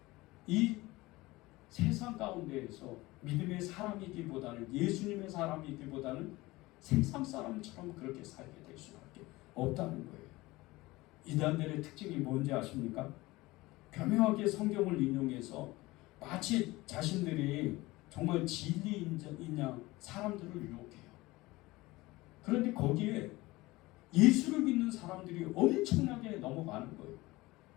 이 세상 가운데에서 믿음의 사람이기보다는 예수님의 사람이기보다는 세상 사람처럼 그렇게 살게 될 수밖에 없다는 거예요. 이단들의 특징이 뭔지 아십니까? 교묘하게 성경을 인용해서 마치 자신들이 정말 진리인 양 사람들을 유혹해요. 그런데 거기에 예수를 믿는 사람들이 엄청나게 넘어가는 거예요.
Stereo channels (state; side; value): quieter; right; 20.3 dB